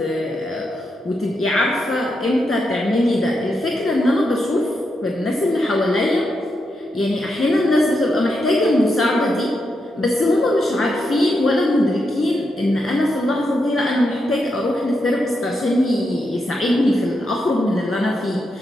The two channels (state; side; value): normal; both; correlation 0.84